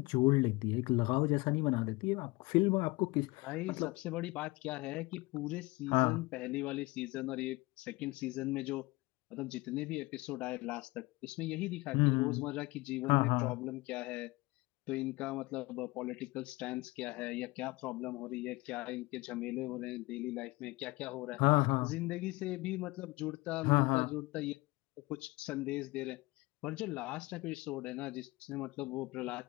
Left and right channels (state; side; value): quieter; right; 22.4 dB